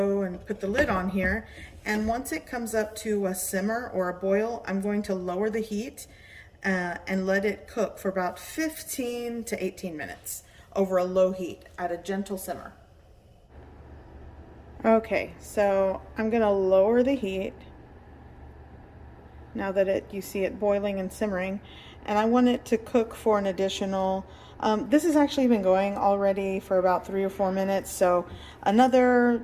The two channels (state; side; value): identical; both; correlation 1.00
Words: and put the lid on here, and once it comes up to a simmer or a boil, I'm going to lower the heat and let it cook for about 15 to 18 minutes over a low heat at a gentle simmer. Okay, so I'm gonna lower the heat now that you see it boiling and simmering, and I want it to cook for an additional, this has actually been going already for about 3 or 4 minutes, so another